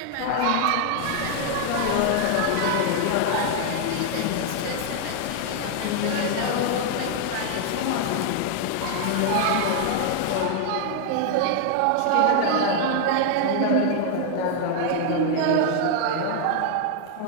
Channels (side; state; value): both; different; correlation 0.00